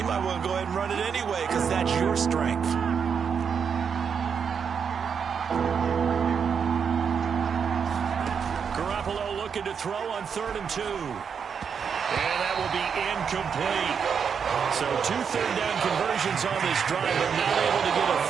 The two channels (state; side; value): quieter; left; 6.7 dB